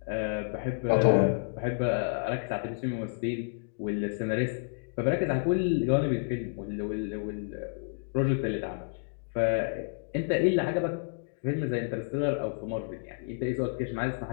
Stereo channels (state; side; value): silent; right; digital silence